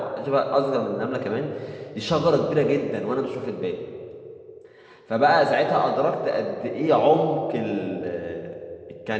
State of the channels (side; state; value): both; identical; correlation 1.00